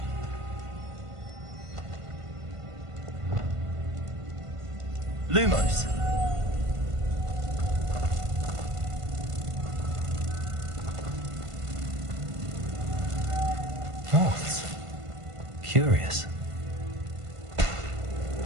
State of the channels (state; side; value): late; left; 1.5 ms